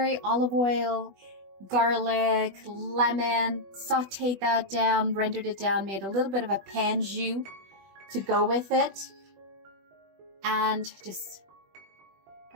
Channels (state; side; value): late; left; 20 ms